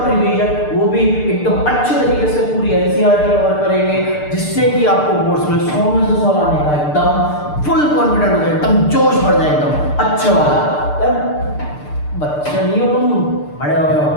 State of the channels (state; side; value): late; right; 6.7 ms